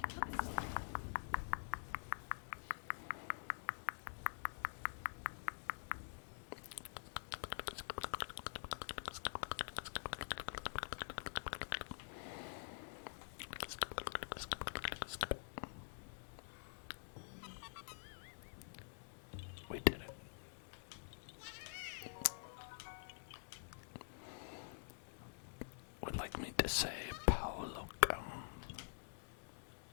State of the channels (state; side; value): silent; right; digital silence